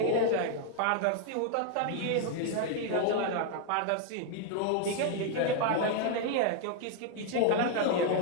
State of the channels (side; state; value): both; different; correlation 0.00